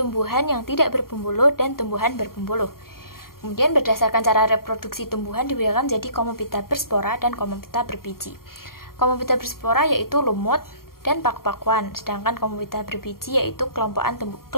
yang tidak berpembuluh dan tumbuhan berpembuluh. Kemudian berdasarkan cara reproduksi tumbuhan dibedakan menjadi Comophyta berspora dan Comophyta berbiji. Comophyta berspora yaitu lumut dan paku-pakuan, sedangkan Comophyta berbiji yaitu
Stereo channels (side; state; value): right; late; 0.93 ms